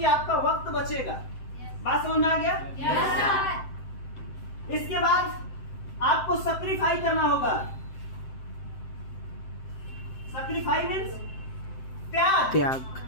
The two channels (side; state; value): right; late; 7.7 ms